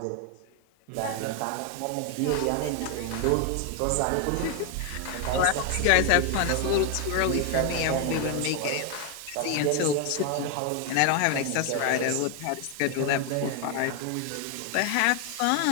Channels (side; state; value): both; different; correlation 0.01